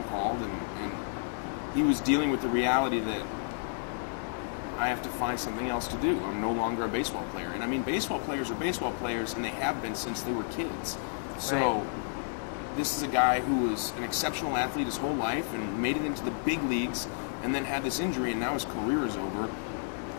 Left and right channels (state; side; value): silent; right; 57 dB below the other